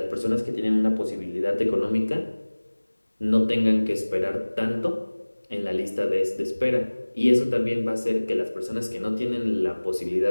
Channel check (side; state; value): both; inverted; correlation -1.00